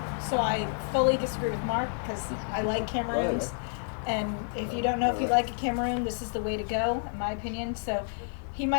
So I fully disagree with Mark because I like Cameroons. And if you don't know if you like a Cameroon, this is the way to go, in my opinion. So he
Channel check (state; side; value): silent; right; digital silence